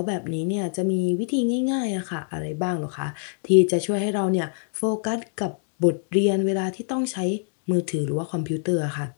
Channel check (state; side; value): silent; right; digital silence